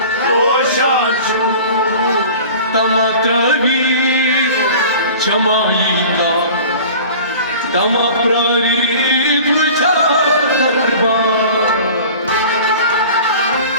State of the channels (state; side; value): inverted; both; correlation -0.41